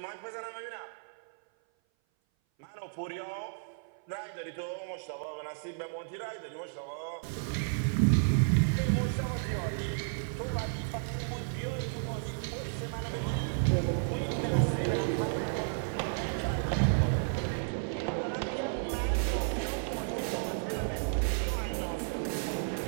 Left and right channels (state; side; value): silent; left; 56 dB below the other